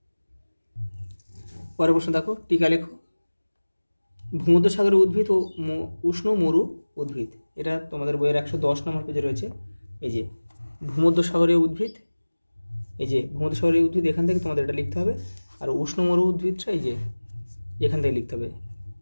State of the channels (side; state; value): both; inverted; correlation -1.00